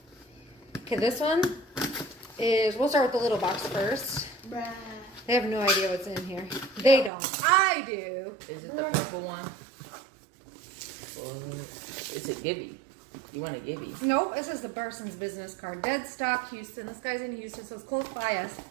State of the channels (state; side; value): drops out; left; at 7.1 s